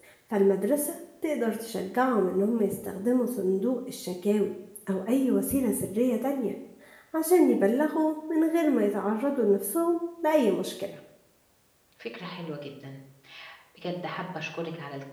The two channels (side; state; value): both; identical; correlation 1.00